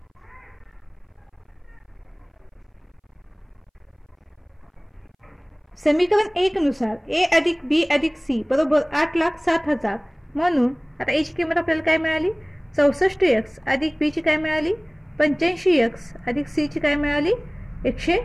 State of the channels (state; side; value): identical; both; correlation 1.00